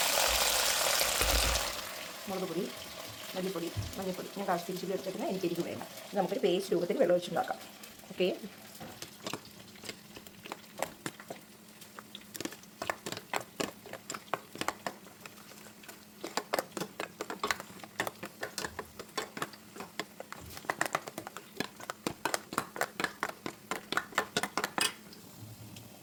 മുളക് പൊടി, മല്ലിപ്പൊടി, മഞ്ഞൾപ്പൊടി ഞാൻ കാശ്മീരി ചില്ലി എടുത്തിട്ട് എനിക്ക് എരിവ് വേണ്ട. നമുക്കൊരു പേസ്റ്റ് രൂപത്തിൽ വെള്ളം ഒഴിച്ചുണ്ടാക്കാം. ഓക്കെ,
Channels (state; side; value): identical; both; correlation 1.00